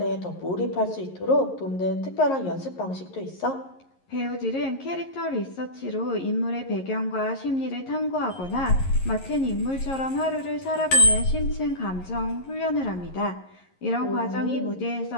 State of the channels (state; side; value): late; right; 11 ms